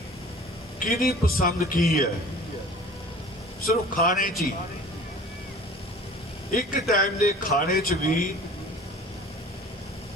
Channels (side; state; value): both; normal; correlation 0.45